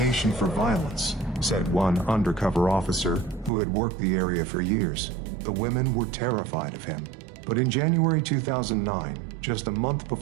for violence, said one undercover officer who had worked the area for years. The women were terrified of him. But in January 2009, just a month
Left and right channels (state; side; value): drops out; left; at 3.5 s